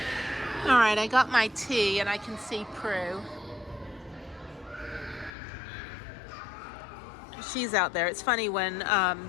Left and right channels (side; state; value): right; drops out; at 5.3 s